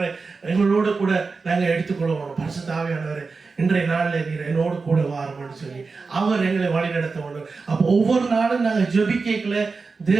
எங்களோடு கூட நாங்கள் எடுத்துக்கொள்வோம். பரிசுத்த ஆவியானவரை இன்றைய நாளில் நீர் என்னோடு கூட வாரும்னு சொல்லி அவர் எங்களை வழி நடத்த வேண்டும். அப்போ ஒவ்வொரு நாளும் நாங்கள் ஜெபிக்கல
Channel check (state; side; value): quieter; left; 4.4 dB